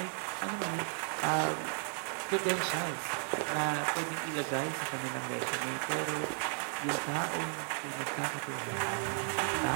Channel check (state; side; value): silent; left; 55 dB below the other